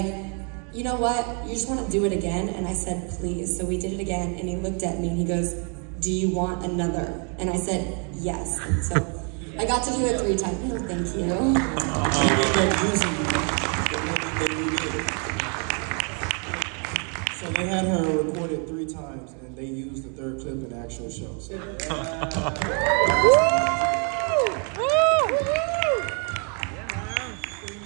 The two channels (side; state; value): left; quieter; 39.0 dB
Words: you know what? You just want to do it again? And I said, please. So we did it again. And he looked at me and he goes, do you want another? And I said, yes. So I got to do it 3 times. Oh, thank you. So they had her recorded 3 times, and they used the 3rd clip in the actual show. So.